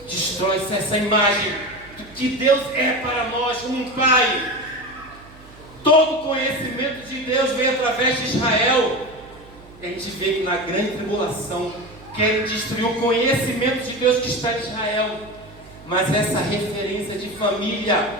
destrói-se essa imagem do que Deus é para nós como um Pai. Todo conhecimento de Deus veio através de Israel. E a gente vê que na grande tribulação querem destruir o conhecimento de Deus que está em Israel. Mas essa referência de família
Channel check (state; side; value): noise; right; hum, 22 dB below the sound